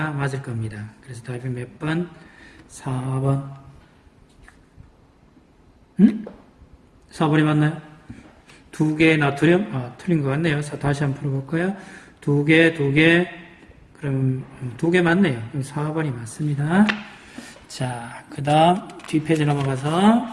맞을 겁니다. 그래서 답이 몇 번? 4번. 4번이 맞나요? 2개 나트륨? 틀린 것 같네요. 다시 한번 풀어볼까요? 2개. 그럼 2개 맞네요. 그럼 4번이 맞습니다. 자, 그 다음 뒷페이지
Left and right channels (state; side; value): identical; both; correlation 1.00